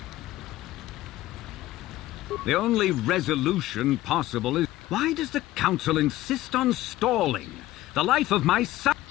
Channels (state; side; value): quieter; right; 16.2 dB